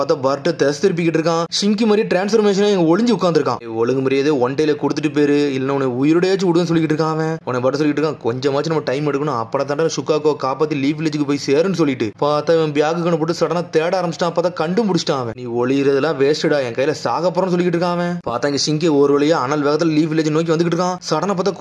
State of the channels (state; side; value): identical; both; correlation 1.00